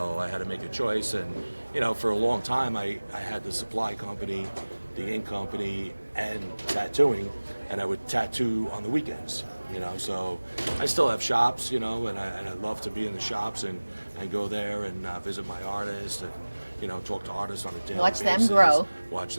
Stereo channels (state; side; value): inverted; both; correlation -1.00